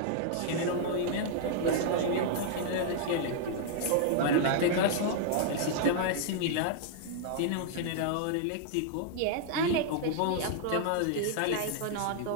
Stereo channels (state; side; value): different; both; correlation -0.01